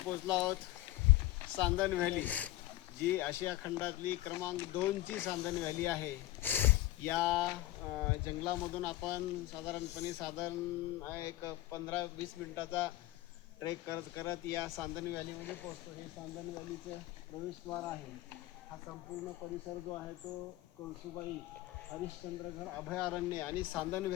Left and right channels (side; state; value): right; quieter; 16.4 dB